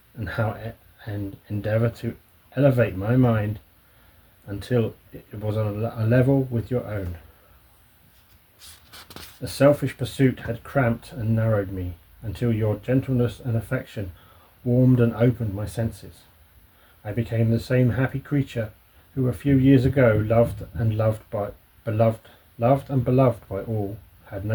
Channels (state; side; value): identical; both; correlation 1.00